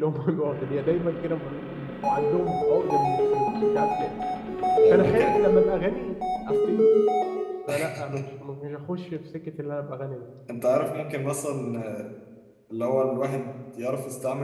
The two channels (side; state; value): both; identical; correlation 1.00